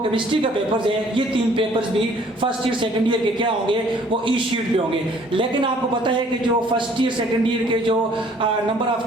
केमिस्ट्री का पेपर्स है ये 3 पेपर्स भी फर्स्ट ईयर सेकंड ईयर के क्या होंगे वो ई शीट पे होंगे। लेकिन आपको पता है कि जो फर्स्ट ईयर सेकंड ईयर के जो नंबर ऑफ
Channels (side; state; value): both; normal; correlation 0.58